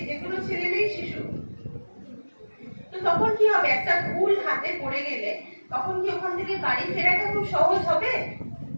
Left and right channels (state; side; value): inverted; both; correlation -1.00